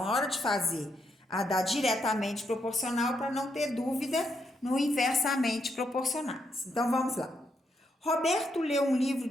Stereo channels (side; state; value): both; normal; correlation 0.78